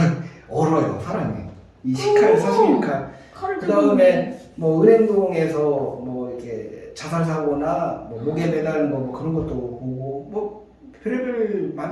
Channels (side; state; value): both; identical; correlation 1.00